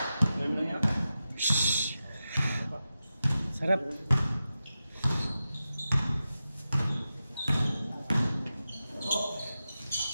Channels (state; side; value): inverted; both; correlation -0.92